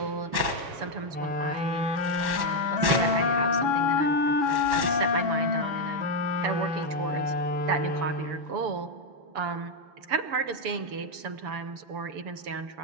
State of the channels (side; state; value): left; late; 6.9 ms